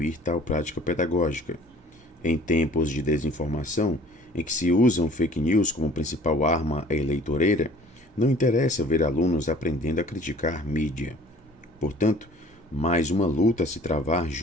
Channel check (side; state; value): both; normal; correlation 0.51